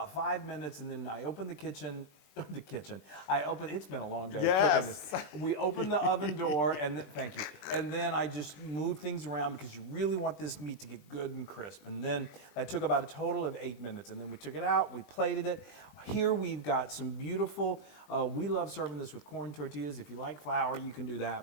5 minutes, and then I opened the kitchen. It's been a long day cooking this. We opened the oven door, and thank you. And then I just moved things around because you really want this meat to get good and crisp. And then that took about a total of 8 minutes. And then we took it out, we plated it. Here we've got some beautiful, we love serving this with corn tortillas. If you like flour, you can do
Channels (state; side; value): late; right; 20 ms